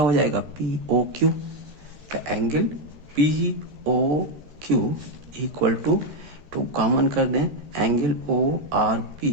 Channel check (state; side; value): late; left; 13 ms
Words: हो जाएगा, पी ओ क्यू। तो angle P O Q equal to common कर दें, angle O R P